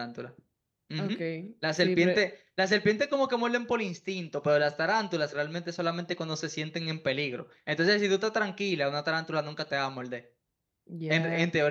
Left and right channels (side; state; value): both; identical; correlation 1.00